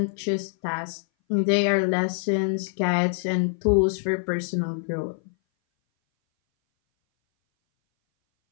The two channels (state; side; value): silent; right; 59 dB below the other